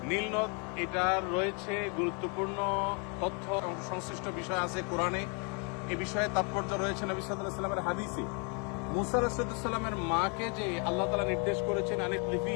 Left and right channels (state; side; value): quieter; right; 35.9 dB